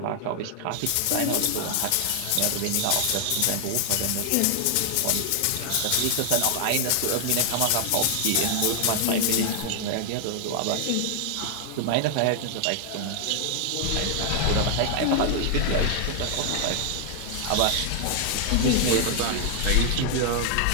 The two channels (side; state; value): both; different; correlation 0.00